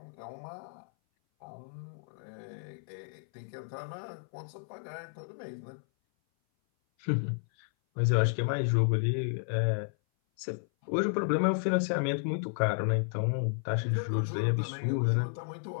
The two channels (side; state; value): right; silent; 56 dB below the other